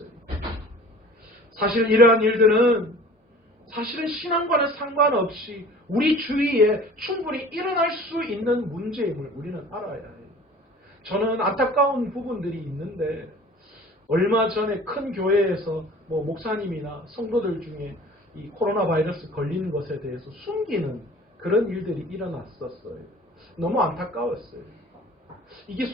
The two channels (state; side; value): normal; both; correlation 0.45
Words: 사실 이러한 일들은 사실은 신앙과는 상관없이 우리 주위에 충분히 일어날 수 있는 문제임을 우리는 알아야 해요. 저는 안타까운 부분들이 있는데 얼마 전에 큰 교회에서 목사님이나 성도들 중에 이 코로나 바이러스 걸리는 것에 대해서 숨기는 그런 일들이 일어났었어요. 너무 안타까웠어요. 이게